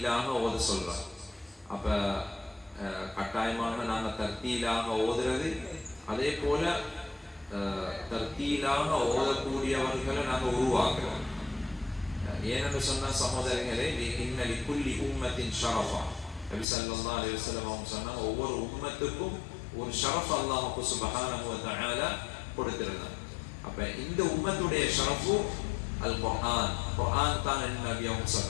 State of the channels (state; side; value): drops out; right; at 16.7 s